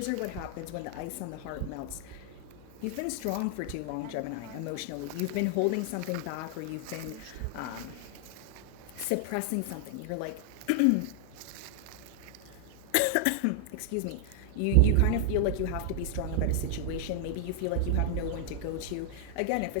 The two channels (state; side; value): different; both; correlation 0.00